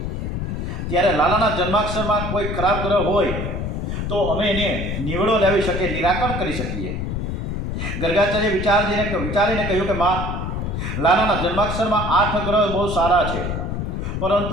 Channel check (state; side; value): noise; left; rumble, 3 dB below the sound